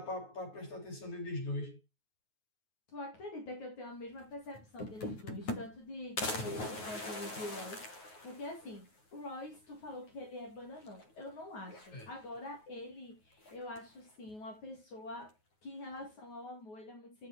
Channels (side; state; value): right; late; 9.4 ms